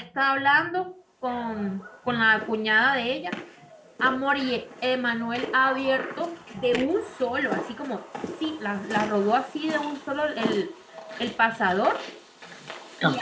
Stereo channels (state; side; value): identical; both; correlation 1.00